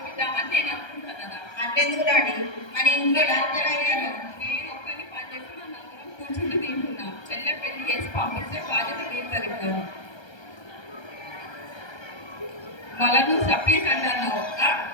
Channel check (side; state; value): right; late; 1.3 ms